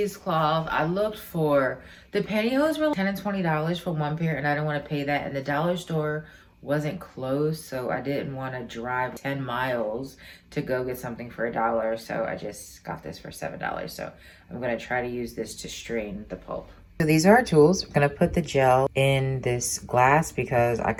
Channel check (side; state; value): both; identical; correlation 1.00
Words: I looked for, the pantyhose were $10 and $20 for one pair, and I didn't want to pay that. And the dollar store wasn't closed, so I didn't want to drive 10 miles to go get something for $1. So I just got this for $7. So I'm going to try to use this to strain the pulp. So these are our tools. I'm going to put the gel in this glass because I